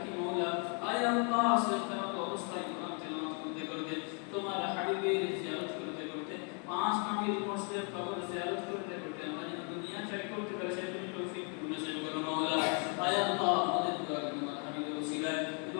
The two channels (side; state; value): right; quieter; 38.7 dB